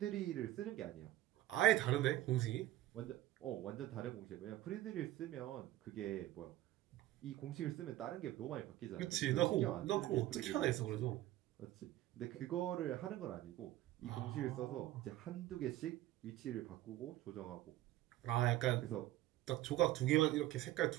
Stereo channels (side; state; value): left; quieter; 15.1 dB